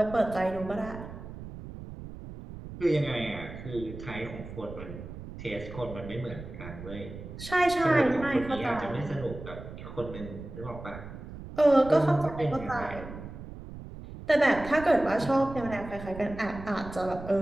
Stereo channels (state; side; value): noise; right; rumble, 12 dB below the sound